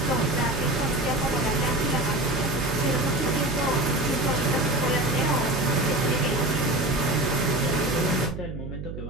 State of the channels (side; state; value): right; noise; hum, 8 dB below the sound